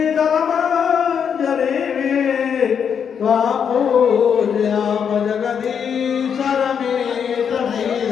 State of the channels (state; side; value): quieter; right; 7.4 dB